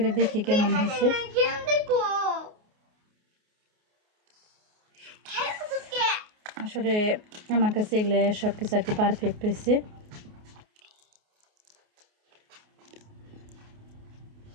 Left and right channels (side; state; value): left; late; 28 ms